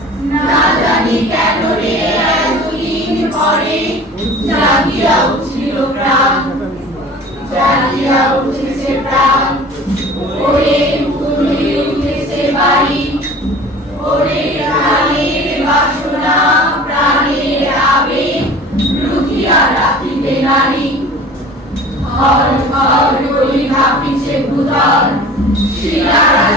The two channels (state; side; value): normal; both; correlation 0.42